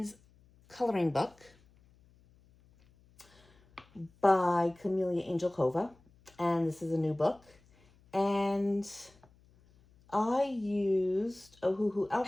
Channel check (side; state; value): left; noise; hum, 30 dB below the sound